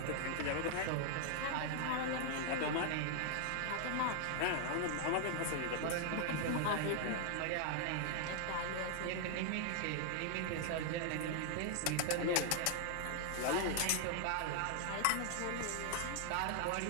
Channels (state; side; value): different; both; correlation 0.00